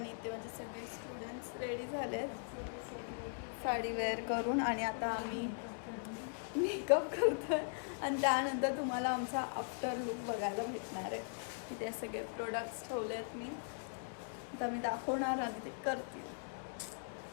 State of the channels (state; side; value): silent; right; digital silence